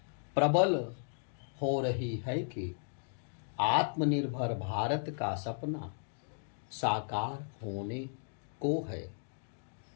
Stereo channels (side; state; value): right; silent; digital silence